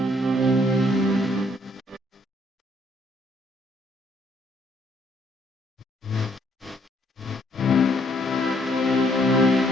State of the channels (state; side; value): normal; both; correlation 0.67